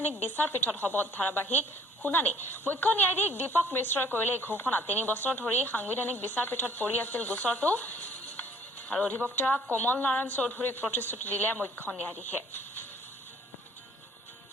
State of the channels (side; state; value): both; normal; correlation 0.56